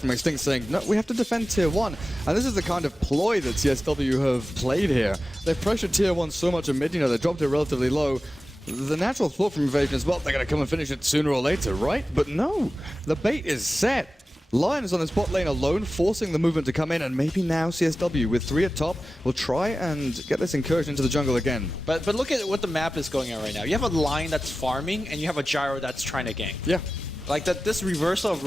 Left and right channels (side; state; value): both; normal; correlation 0.95